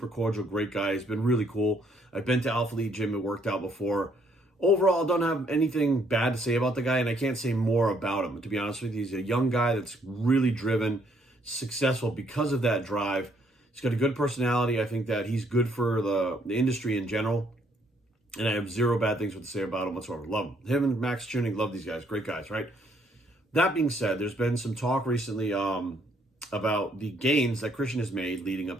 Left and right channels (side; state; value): both; normal; correlation 0.69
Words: cordial, great guy. He's been really cool. I've been to Alpha Elite Gym and worked out before. Overall, I don't have anything bad to say about the guy, and I can't say more about him. To be honest with you, he's a young guy that's really driven, successful because of that drive. He's got a good personality. I think that he's good for the industry in general, and I have zero bad things to say about him whatsoever. Love him. Him and Max Tuning, love these guys. Great guys, right? That being said, there's been some talk recently about the gains that Christian has made leading